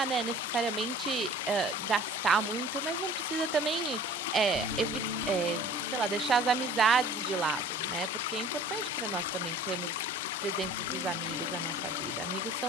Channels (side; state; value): both; normal; correlation 0.47